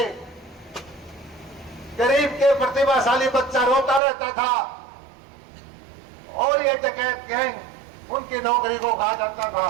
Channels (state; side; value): drops out; left; at 4.0 s